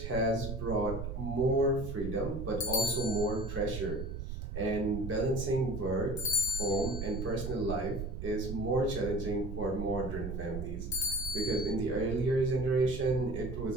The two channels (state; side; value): noise; right; rumble, 6 dB below the sound